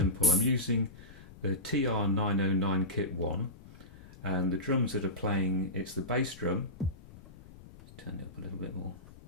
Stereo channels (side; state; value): left; noise; rumble, 19 dB below the sound